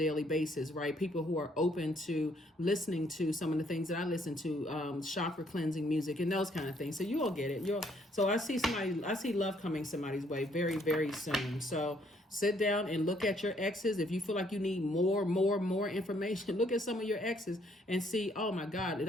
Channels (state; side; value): normal; both; correlation 0.67